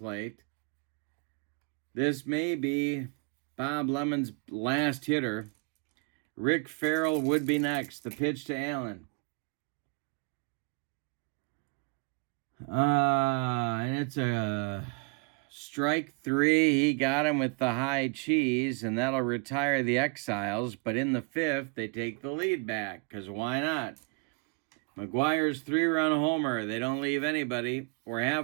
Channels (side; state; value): left; quieter; 31.2 dB